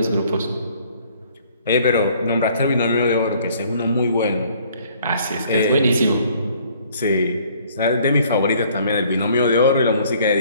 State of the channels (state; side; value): inverted; both; correlation -0.59